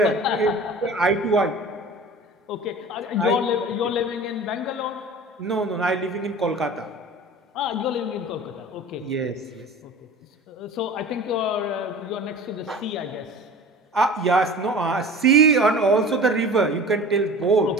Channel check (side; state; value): both; normal; correlation 0.39